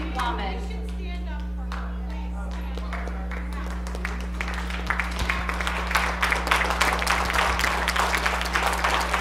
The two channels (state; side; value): identical; both; correlation 1.00